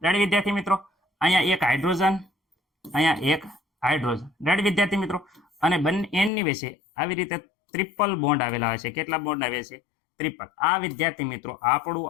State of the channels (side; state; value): right; drops out; at 6.3 s